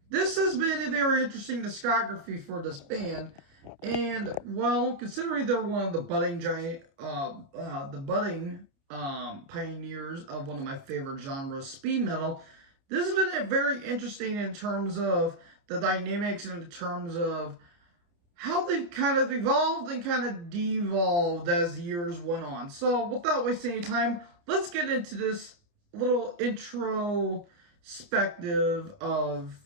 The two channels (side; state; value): left; late; 29 ms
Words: This has been a very interesting discography for this band, and well, considering they're one of the budding pioneers of one of my favorite genres, speed metal, this has been very interesting in terms of the dynamics and in terms of how they've kind of evolved and kind of devolved as the years went on. So without wasting any time, let's get into this little introspective of